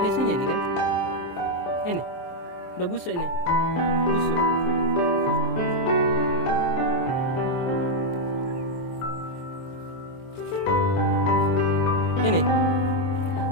isinya nih kan? Ini udah busuk ini, busuk. Ini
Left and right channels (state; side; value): late; right; 23 ms